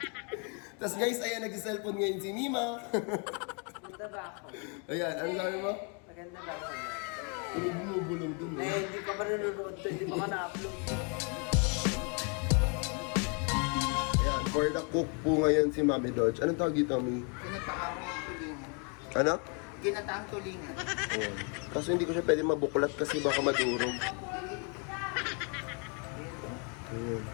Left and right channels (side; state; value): right; quieter; 36.3 dB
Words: Tapos guys, ayan, nag-cellphone ngayon si Mima. Maganda ba ako? Ayan, ano sabi mo? Maganda ba ako? Bumubulong dun eh. Hindi ka pa nanonood to, hindi pa ka na-upload. Ayan, for the cook po ngayon si Mami Dodge. Anong tawag dito, Mi? Ginataang tulingan. Ano? Ginataang tulingan. Ayan. Kaso hindi ko siya pwede mabuklat kasi baka madurog. Ayan.